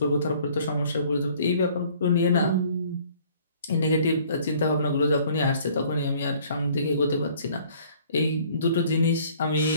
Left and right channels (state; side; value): inverted; both; correlation -0.56